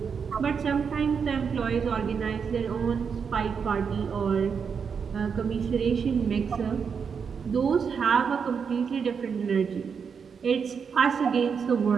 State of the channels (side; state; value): left; quieter; 6.3 dB